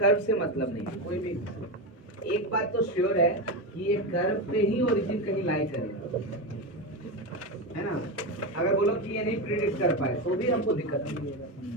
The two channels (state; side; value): normal; both; correlation 0.15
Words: से मतलब नहीं। कोई भी एक बात तो श्योर है कि ये कर्व पे ही ओरिजिन कहीं लाई करेगा, है ना। अगर बोलो कि ये नहीं प्रिडिक्ट कर पाए तो भी हमको दिक्कत नहीं है,